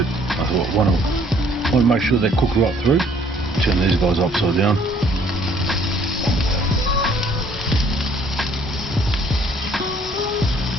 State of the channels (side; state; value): both; normal; correlation 0.60